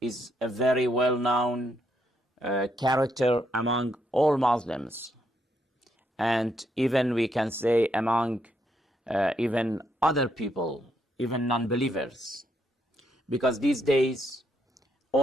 is a very well-known character among all Muslims, and even we can say among even other people, even non-believers, because these days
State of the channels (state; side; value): normal; both; correlation 0.76